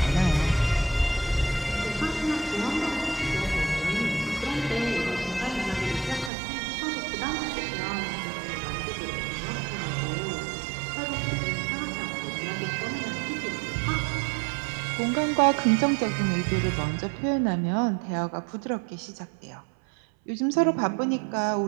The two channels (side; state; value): left; drops out; at 6.3 s